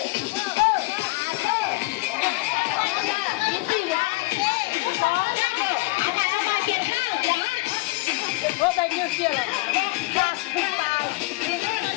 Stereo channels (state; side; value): quieter; right; 23.5 dB